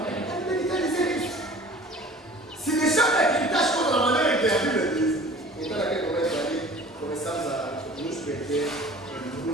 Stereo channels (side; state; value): both; normal; correlation 0.45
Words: quer dizer isso. Se deixar de acreditar as coisas da maneira que a Bíblia diz, Então, naquele momento ali, começamos a nos perder em